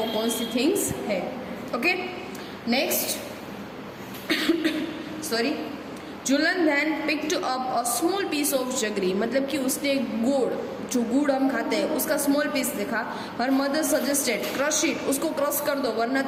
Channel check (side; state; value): both; identical; correlation 1.00